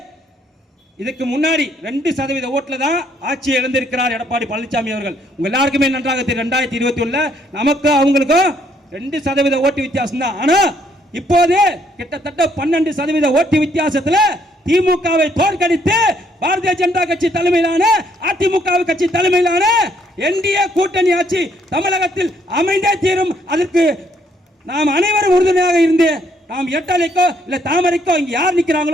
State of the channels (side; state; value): both; normal; correlation 0.69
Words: இதுக்கு முன்னாடி 2% ஓட்டுல தான் ஆட்சியை இழந்திருக்கிறார் எடப்பாடி பழனிசாமி அவர்கள். உங்க எல்லாருக்குமே நன்றாக தெரியும் 2021 நமக்கு அவங்களுக்கும் 2% ஓட்டு வித்தியாசம் தான். ஆனா இப்போது கிட்டத்தட்ட 12% ஓட்டு வித்தியாசத்துல திமுகவை தோற்கடித்து பாரதிய ஜனதா கட்சி தலைமையிலான அதிமுக கட்சி தலைமையிலான என்டிஏ கூட்டணி ஆட்சி தமிழகத்தில் அமைந்தே தீரும். அதற்கு நாம் அனைவரும் உறுதுணையாக இருந்து நாம் எட்டலைக்கோ இல்ல தாமரைக்கோ இங்க யார்